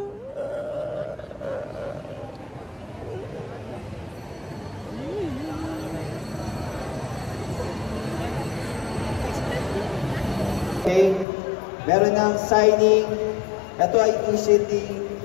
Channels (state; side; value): drops out; right; at 11.2 s